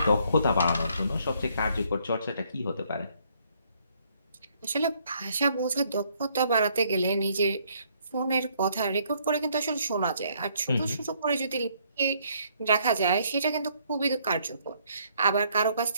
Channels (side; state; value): both; inverted; correlation -0.67